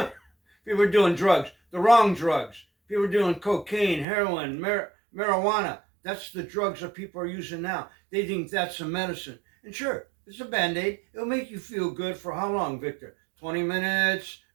People are doing drugs, the wrong drugs. People are doing cocaine, heroin, marijuana. That's the drugs that people are using now. They think that's a medicine. And sure, it's a Band-Aid. It'll make you feel good for how long, Victor? 20 minutes,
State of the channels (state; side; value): drops out; left; at 4.0 s